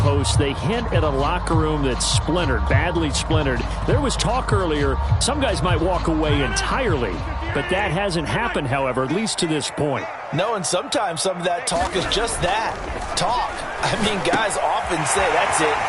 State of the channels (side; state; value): both; identical; correlation 1.00